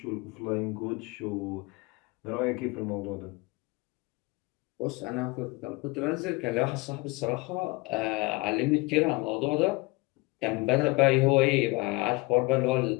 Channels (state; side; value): quieter; right; 24.8 dB